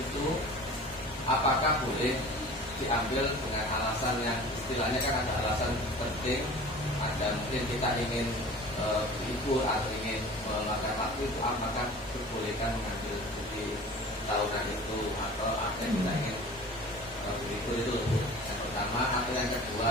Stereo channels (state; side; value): normal; both; correlation 0.41